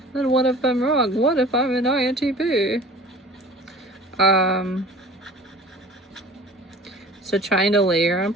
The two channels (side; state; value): both; normal; correlation 0.43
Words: then what if I'm wrong? What if I'm an INTP? So trying to layer on